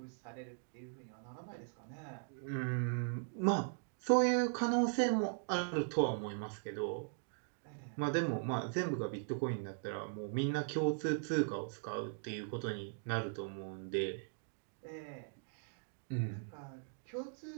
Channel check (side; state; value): left; silent; digital silence